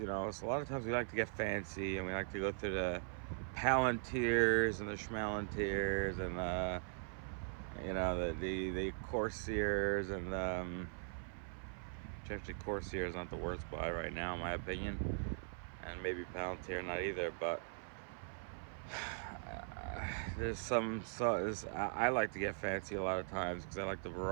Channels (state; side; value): silent; left; 51 dB below the other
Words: you know. So a lot of times we like to get fancy and we like to go through the Palantirs and the Schmalantirs and you know, the Corsairs and actually Corsair is not the worst buy right now in my opinion, and maybe Palantir not either, but there's some, so I like to get fancy a lot of times because I like the